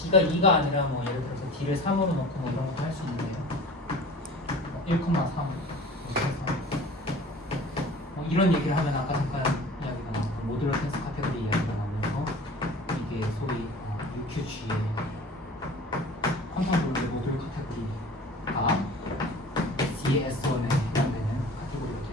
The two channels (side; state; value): both; normal; correlation 0.41